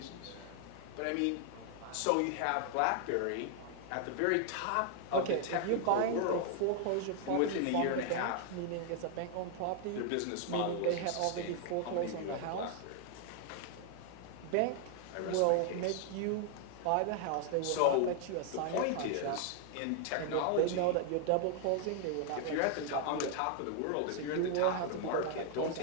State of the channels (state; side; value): different; both; correlation 0.00